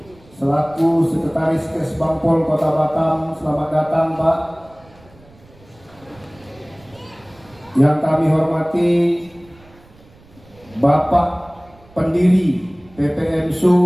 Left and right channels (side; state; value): right; noise; rumble, 27 dB below the sound